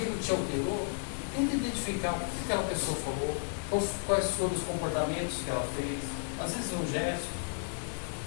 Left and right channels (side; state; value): right; silent; digital silence